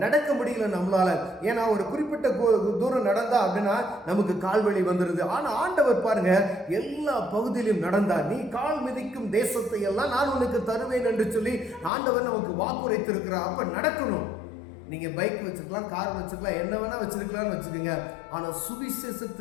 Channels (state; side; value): drops out; right; at 11.9 s